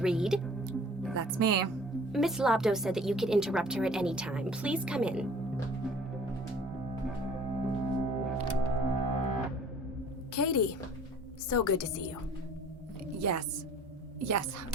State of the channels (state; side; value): normal; both; correlation 0.49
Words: Reed? That's me. Miss Lobdow said that you could interrupt her at any time. Please come in. Katie, so good to see you. Yes. Yes.